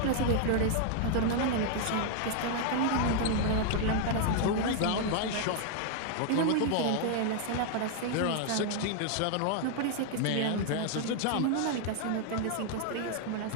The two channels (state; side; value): different; both; correlation 0.00